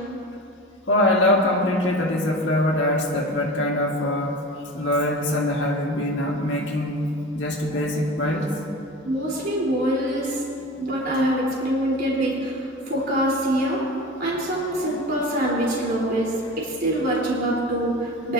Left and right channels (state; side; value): normal; both; correlation 0.33